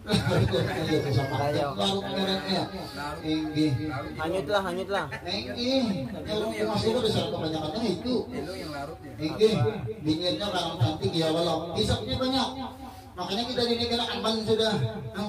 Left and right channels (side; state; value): both; identical; correlation 1.00